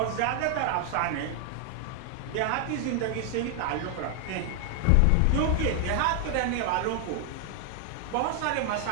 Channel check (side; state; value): both; different; correlation 0.00